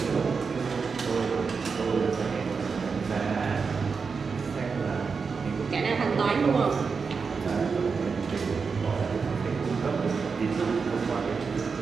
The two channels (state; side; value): quieter; left; 5.2 dB